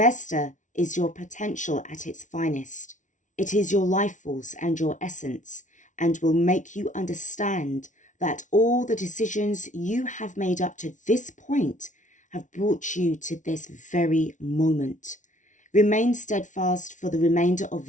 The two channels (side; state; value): right; late; 0.37 ms